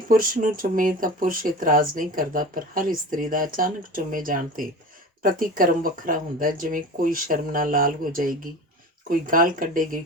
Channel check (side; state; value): both; normal; correlation 0.34